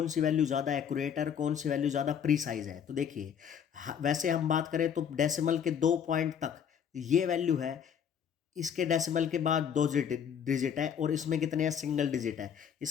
सी वैल्यू ज़्यादा एक्यूरेट है और कौन सी वैल्यू ज़्यादा प्रीसाइज है, तो देखिए वैसे हम बात करें तो डेसिमल के 2 पॉइंट तक ये वैल्यू है, इसके डेसिमल के बाद 2 डिजिट है और इसमें कितने हैं, सिंगल डिजिट है।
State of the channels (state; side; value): quieter; right; 8.1 dB